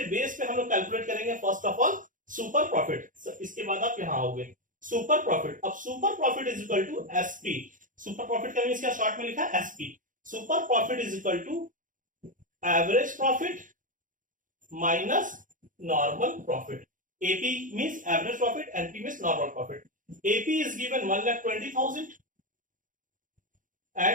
बेस पे हम लोग कैलकुलेट करेंगे first of all super profit. इसके बाद आप यहां आओगे सुपर प्रॉफिट। अब super profit is equal to SP. Super profit का मींस क्या शॉर्ट में लिखा है SP. Super profit is equal to average profit minus normal profit. AP means average profit NP means normal profit. AP is given 1,20,000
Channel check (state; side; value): late; left; 0.38 ms